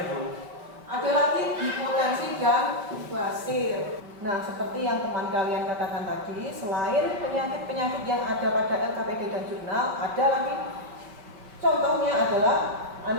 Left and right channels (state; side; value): late; left; 5.0 ms